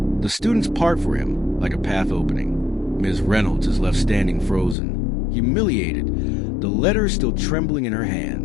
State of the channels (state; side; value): drops out; right; at 4.8 s